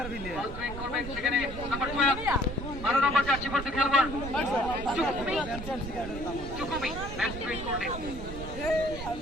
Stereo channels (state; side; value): noise; right; rumble, 9 dB below the sound